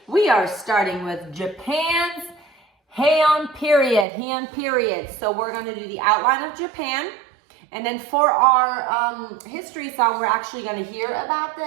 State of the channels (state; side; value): drops out; left; at 4.0 s